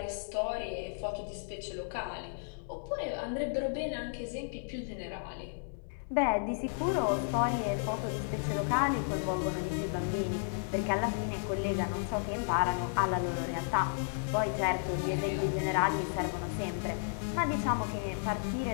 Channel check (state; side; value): silent; right; digital silence